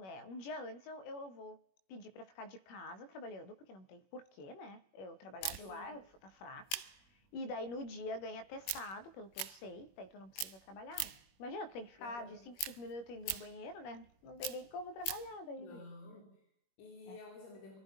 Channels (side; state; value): right; late; 21 ms